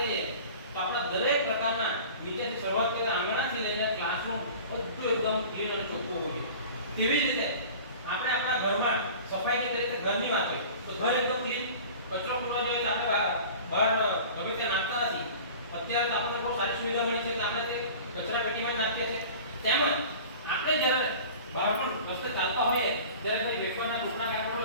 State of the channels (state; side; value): inverted; both; correlation -0.41